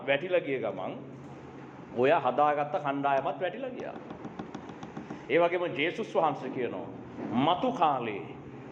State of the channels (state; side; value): identical; both; correlation 1.00